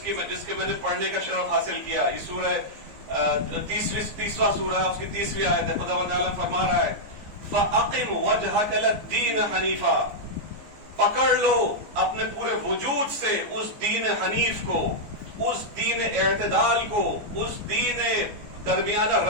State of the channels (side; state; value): left; late; 14 ms